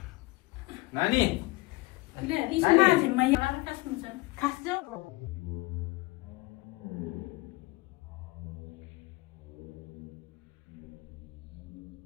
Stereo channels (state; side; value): quieter; right; 22.2 dB